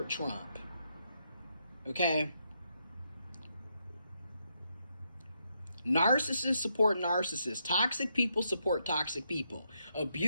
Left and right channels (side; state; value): both; inverted; correlation -0.80